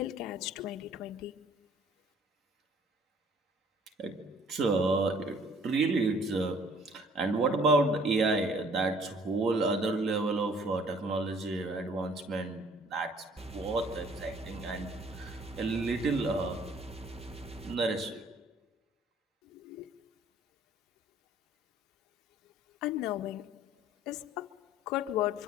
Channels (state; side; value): normal; both; correlation 0.57